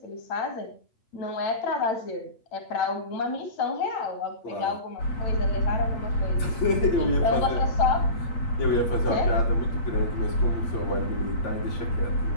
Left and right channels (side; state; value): right; late; 8.5 ms